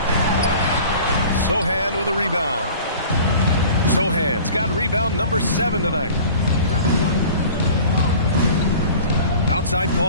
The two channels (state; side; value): inverted; both; correlation -0.43